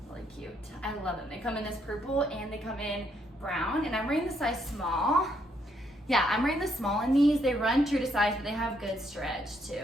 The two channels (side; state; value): both; normal; correlation 0.73